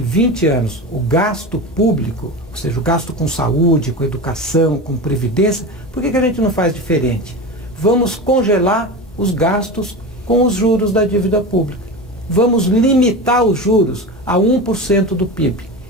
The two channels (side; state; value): both; normal; correlation 0.26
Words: anos o gasto público, ou seja, o gasto com saúde, com educação, com previdência, por que a gente não faz diferente? Vamos congelar os gastos com os juros da dívida pública. Vamos limitar os juros a 1% do PIB